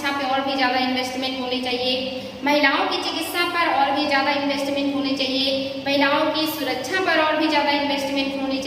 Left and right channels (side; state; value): both; identical; correlation 1.00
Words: पे और भी ज़्यादा इन्वेस्टमेंट होनी चाहिए, महिलाओं की चिकित्सा पर और भी ज़्यादा इन्वेस्टमेंट होनी चाहिए, महिलाओं की सुरक्षा पर और भी ज़्यादा इन्वेस्टमेंट होनी